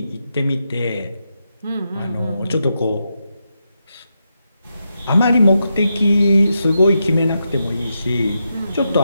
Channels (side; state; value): both; inverted; correlation -0.85